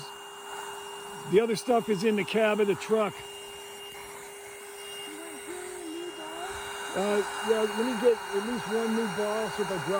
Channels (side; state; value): both; identical; correlation 1.00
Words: The other stuff is in the cab of the truck. Yeah, let me get at least 1 new ball, so if I